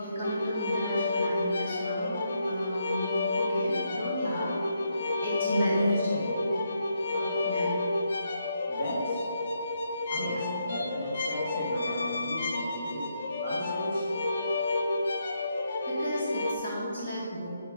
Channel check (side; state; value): both; inverted; correlation -0.79